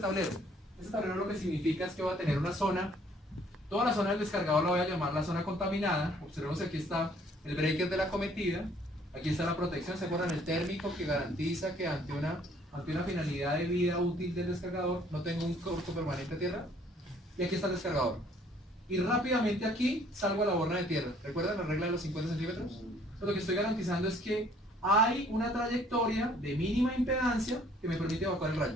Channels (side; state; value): both; normal; correlation 0.60